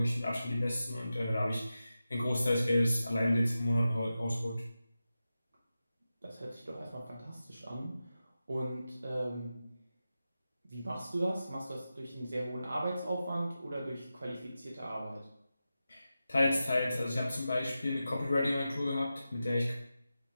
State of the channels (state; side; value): inverted; both; correlation -0.92